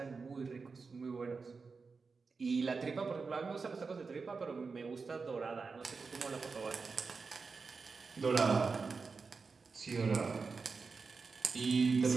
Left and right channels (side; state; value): left; quieter; 4.7 dB